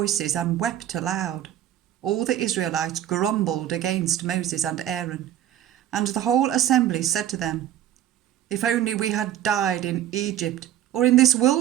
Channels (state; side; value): quieter; left; 11.7 dB